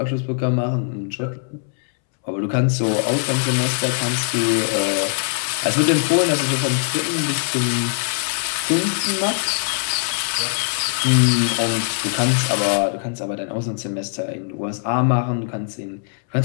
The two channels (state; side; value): silent; right; 65 dB below the other